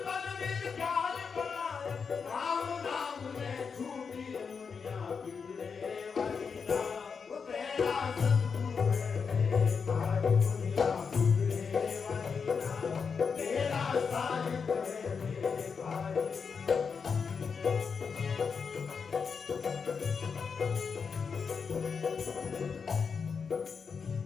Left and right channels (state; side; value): quieter; right; 5.8 dB